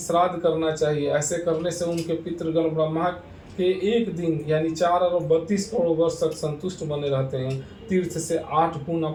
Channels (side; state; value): both; identical; correlation 1.00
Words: करना चाहिए। ऐसे करने से उनके पितृगण ब्रह्मा के एक दिन यानी 4 अरब 32 करोड़ वर्ष तक संतुष्ट बने रहते हैं। तीर्थ से 8